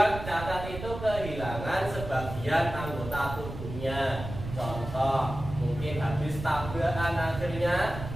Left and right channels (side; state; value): right; noise; rumble, 9 dB below the sound